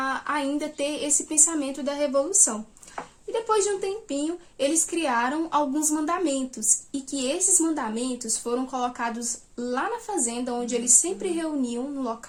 ainda ter esse pensamento da revolução. E depois de um tempinho, eles criaram alguns mandamentos, e que esses mandamentos foram colocados lá na fazenda, onde eles sempre reuniam, no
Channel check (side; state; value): both; identical; correlation 1.00